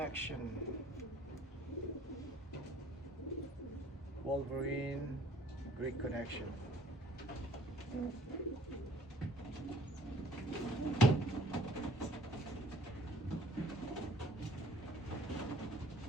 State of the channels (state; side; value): normal; both; correlation 0.56